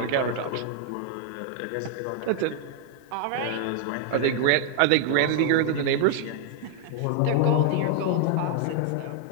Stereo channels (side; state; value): both; different; correlation 0.00